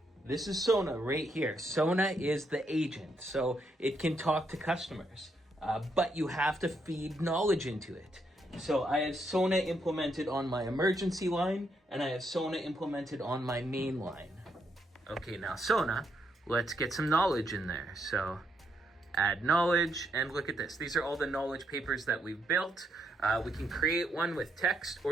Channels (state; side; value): normal; both; correlation 0.77